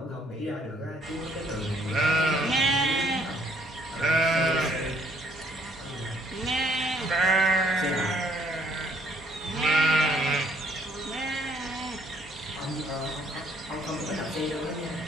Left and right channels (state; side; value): normal; both; correlation 0.64